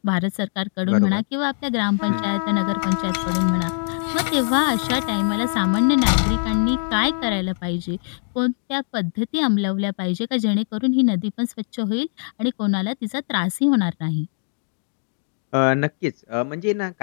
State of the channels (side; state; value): right; silent; digital silence